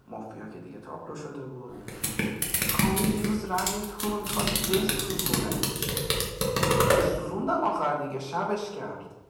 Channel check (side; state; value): both; identical; correlation 1.00